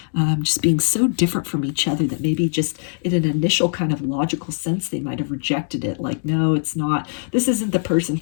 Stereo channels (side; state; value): right; silent; digital silence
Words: just being so different from each other that maybe just in an initial kind of logical sense, they might have rejected it. Like, no, it's not, this isn't the person